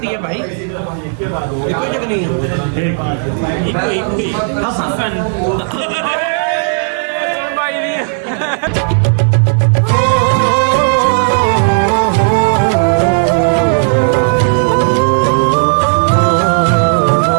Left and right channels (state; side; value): silent; left; digital silence